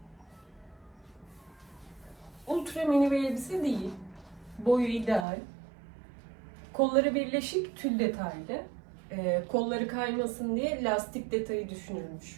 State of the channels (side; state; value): left; drops out; at 5.2 s